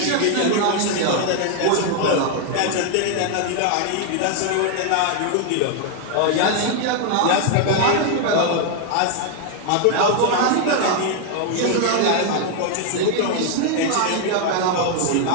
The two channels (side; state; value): both; different; correlation 0.00